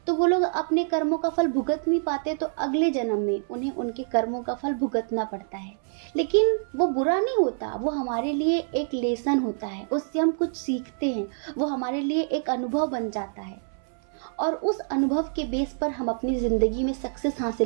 तो वो लोग अपने कर्मों का फल भुगत नहीं पाते, तो अगले जन्म में उन्हें उनके कर्मों का फल भुगतना पड़ता है। लेकिन वो बुरा नहीं होता, वो हमारे लिए एक लेसन होता है, उससे हम कुछ सीखते हैं, वो हमारे लिए एक अनुभव बन जाता है और उस अनुभव के बेस पर हम अपनी ज़िंदगी में सक्सेस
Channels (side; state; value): left; silent; 60 dB below the other